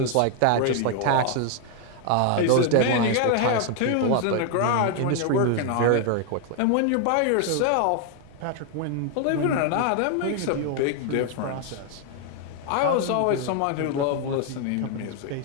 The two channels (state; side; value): different; both; correlation 0.00